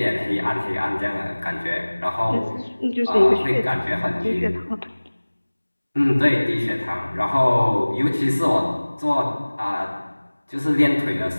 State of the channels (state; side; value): inverted; both; correlation -1.00